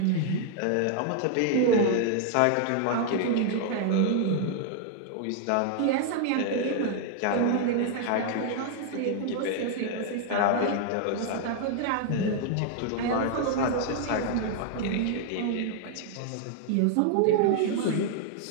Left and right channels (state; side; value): different; both; correlation 0.00